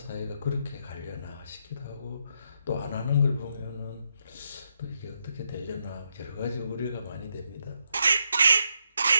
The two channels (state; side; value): inverted; both; correlation -0.80